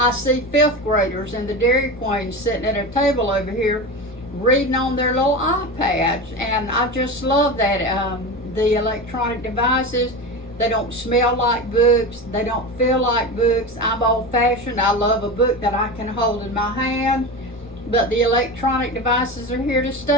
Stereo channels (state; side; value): noise; left; rumble, 24 dB below the sound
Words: see fifth graders in the Dairy Queen sitting at a table over here reading on their little iPads, and I just love that. The electronic devices, they don't smell like books, they don't feel like books. I'm old-fashioned. I love a book that I can hold in my hand, but the electronic devices are here to